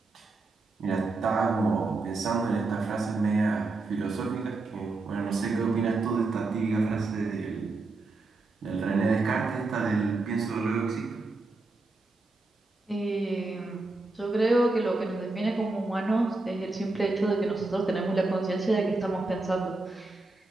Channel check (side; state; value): left; quieter; 3.3 dB